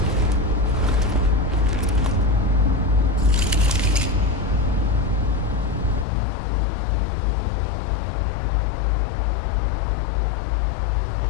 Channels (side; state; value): right; drops out; at 6.1 s